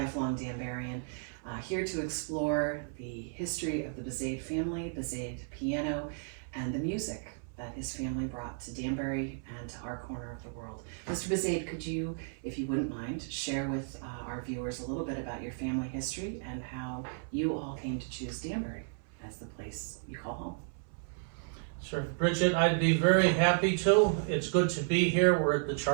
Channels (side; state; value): left; silent; 55 dB below the other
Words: Danburian, here to explore the history of the Buzaid family, Buzaid piano, and the music that his family brought to Danbury and to our corner of the world. Mr. Buzaid, could you, if you wouldn't mind, share with our viewers a little bit about your family history and how you all came to choose Danbury as the place you call home? Sure, Bridget, I'd be very happy to. It's good to be here. We're at the